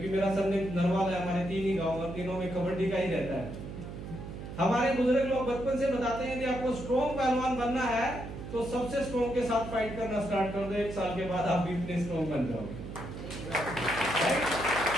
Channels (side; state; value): right; noise; hum, 9 dB below the sound